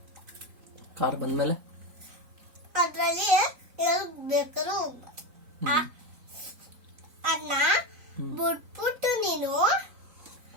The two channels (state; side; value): late; left; 3.9 ms